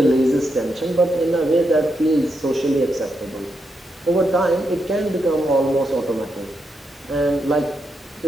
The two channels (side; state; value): both; normal; correlation 0.83